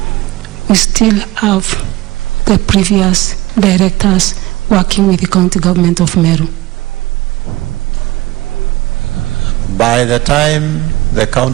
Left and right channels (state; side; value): quieter; left; 18.4 dB